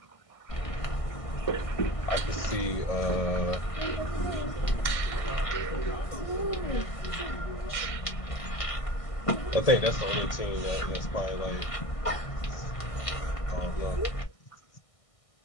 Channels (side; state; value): right; late; 1.6 ms